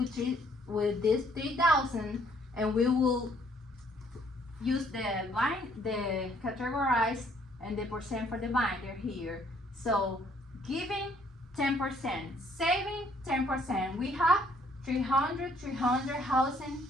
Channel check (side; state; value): both; normal; correlation 0.65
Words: this 3,000, and we will use the categorize and the percent for the binder here. So giving 10%, saving 10%. We have 300, housing